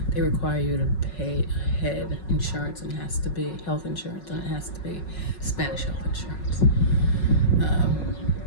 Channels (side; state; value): right; late; 5.4 ms